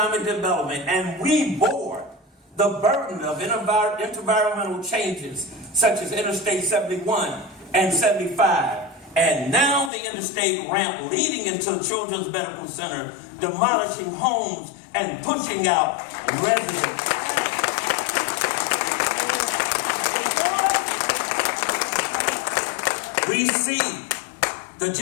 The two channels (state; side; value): drops out; right; at 9.9 s